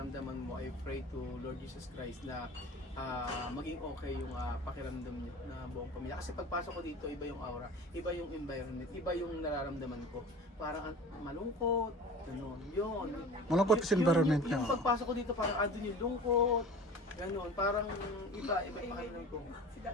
mo, I pray to Lord Jesus Christ na maging okay yung pakiramdam niyo na buong pamilya. Kasi pagpasok ko dito, iba yung aura, iba yung environment, iba yung nararamdaman ko. Parang malungkot, gano'n, yun. Malungkot kasi environment niya. Yung pagpasok ko dito, parang andun yung lungkot, gano'n, parang iba pakiramdam ko. Si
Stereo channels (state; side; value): normal; both; correlation 0.39